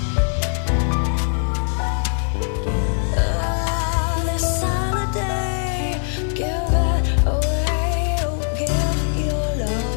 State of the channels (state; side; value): silent; right; 65 dB below the other